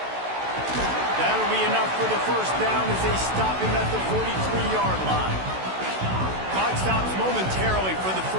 That'll be enough for the first down as they stop him at the 43-yard line. Clock stops momentarily for the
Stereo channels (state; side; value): late; left; 16 ms